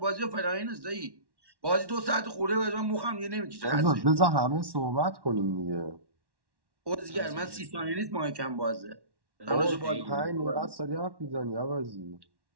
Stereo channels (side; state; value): left; late; 1.1 ms